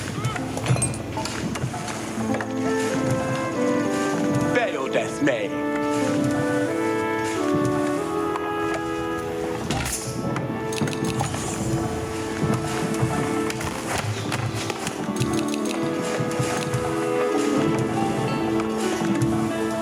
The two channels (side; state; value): both; identical; correlation 1.00